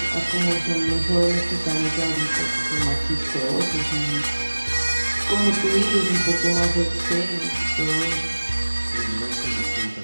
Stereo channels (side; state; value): both; inverted; correlation -1.00